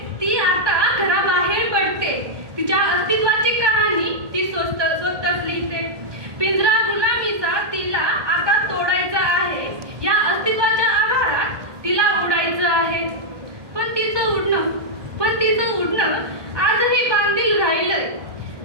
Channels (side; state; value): left; late; 1.2 ms